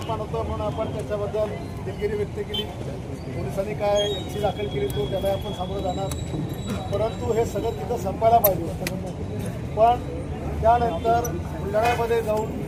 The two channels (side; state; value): both; identical; correlation 1.00